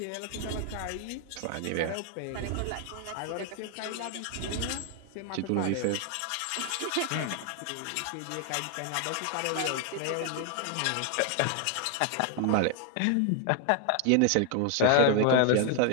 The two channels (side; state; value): both; different; correlation 0.00